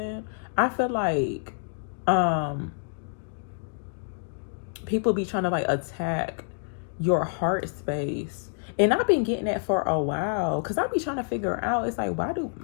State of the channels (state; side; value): silent; right; digital silence